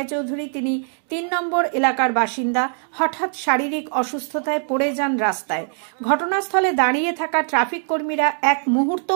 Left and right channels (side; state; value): left; silent; 59 dB below the other